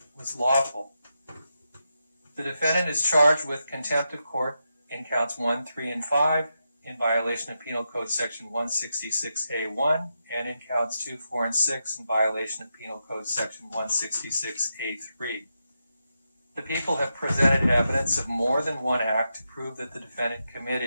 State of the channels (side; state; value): both; inverted; correlation -0.86